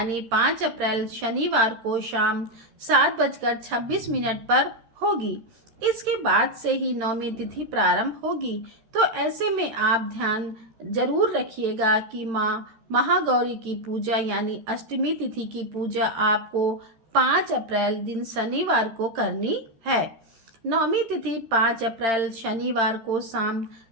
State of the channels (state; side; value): late; left; 13 ms